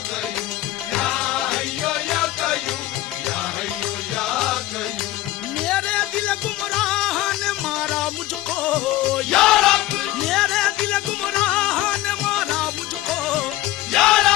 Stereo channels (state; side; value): quieter; right; 15.6 dB